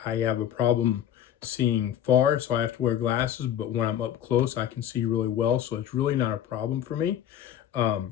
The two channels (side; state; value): right; quieter; 10.4 dB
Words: I have a problem seeing far, so I have to wear glasses, but when I'm up close, I can see really well, so it's really not a problem for me.